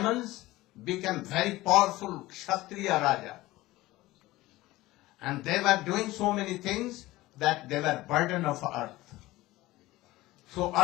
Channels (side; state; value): right; quieter; 18.2 dB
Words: became very powerful Kshatriya Raja. And they were doing so many things that they were burden of earth. So